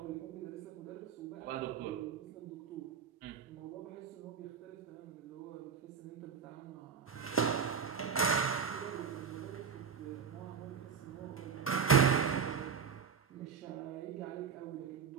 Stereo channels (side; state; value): left; quieter; 6.6 dB